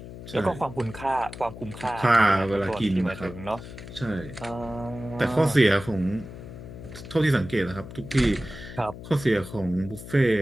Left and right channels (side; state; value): left; noise; hum, 13 dB below the sound